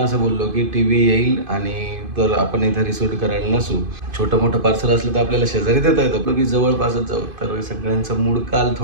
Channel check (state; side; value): late; left; 2.5 ms